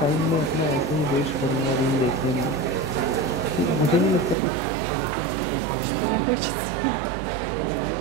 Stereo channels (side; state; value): left; drops out; at 4.4 s